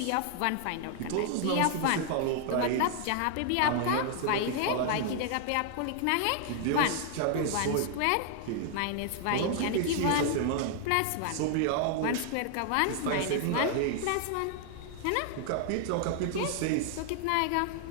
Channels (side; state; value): both; different; correlation 0.00